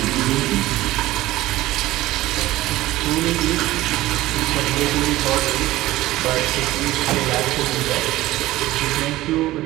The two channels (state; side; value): quieter; left; 16.8 dB